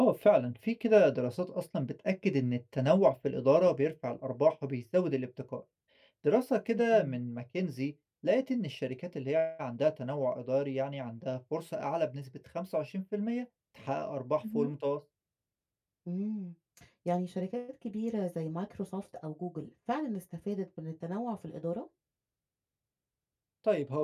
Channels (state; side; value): identical; both; correlation 1.00